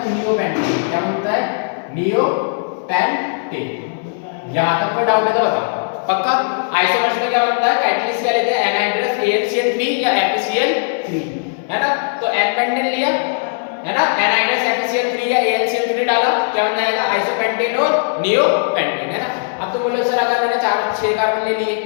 नियोपेंटेन, क्या बोलता है नियोपेंटेन। यहां तक कोई डाउट है तो बताओ पक्का। आइसोमर्स में क्या बनता है कैटलिस्ट क्या लेते हैं एनहाइड्रस AlCl3 या FeCl3, है ना। तो एन पेंटेन लिया, है ना, एनहाइड्रस FeCl3 या AlCl3 डाला, क्या बन जाएगा आइसोपेंटेन और नियोपेंटेन, है ना। अब तो बोलो सर अगर मैंने 6 कार्बन ले लिए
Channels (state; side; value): silent; right; digital silence